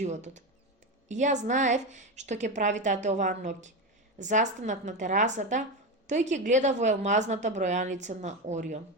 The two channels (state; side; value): normal; both; correlation 0.16